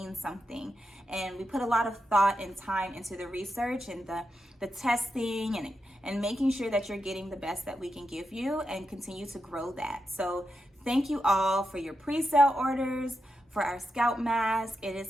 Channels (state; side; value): normal; both; correlation 0.87